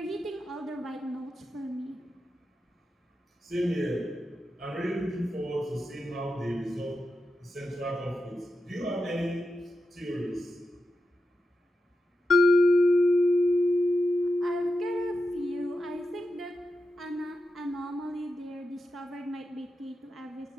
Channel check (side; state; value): both; normal; correlation 0.89